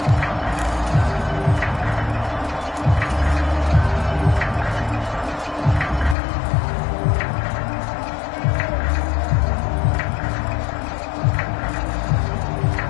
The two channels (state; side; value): drops out; right; at 6.2 s